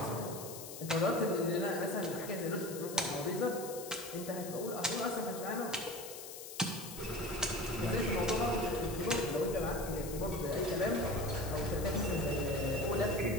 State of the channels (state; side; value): noise; left; hiss, 11 dB below the sound